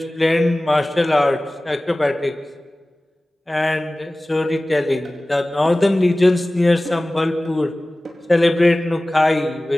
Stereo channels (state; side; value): normal; both; correlation 0.98